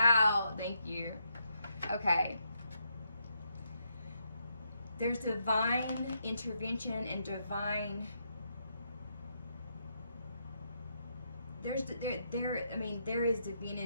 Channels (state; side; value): inverted; both; correlation -0.79